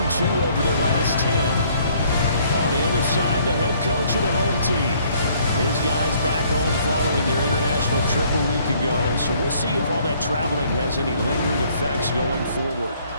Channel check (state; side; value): inverted; both; correlation -0.62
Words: over their last 10. On the other side, the head coach of the home team. His guys back home following their international trip a week ago, so we'll see if all that traveling has any lingering effects going forward.